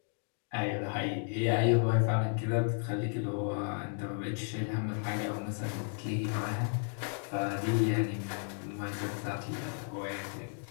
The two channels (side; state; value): right; silent; 55 dB below the other